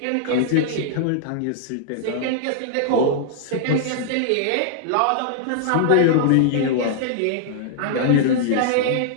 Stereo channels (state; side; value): different; both; correlation -0.01